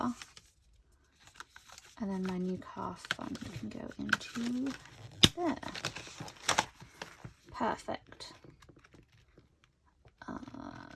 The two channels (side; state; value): both; identical; correlation 1.00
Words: And then my new car fund can go into there. Perfect.